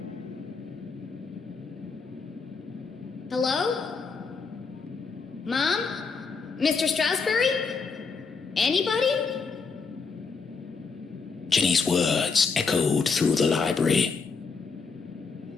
Hello? Mom? Mr. Stroudsbury? Anybody? Jenny's words echoed through the library.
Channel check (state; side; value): quieter; right; 4.9 dB